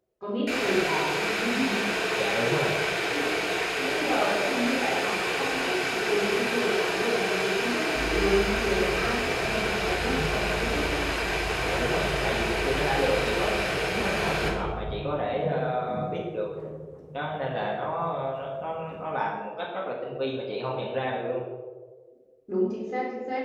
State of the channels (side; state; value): both; identical; correlation 1.00